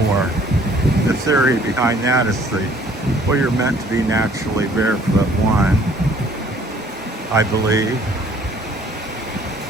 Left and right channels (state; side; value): normal; both; correlation 0.58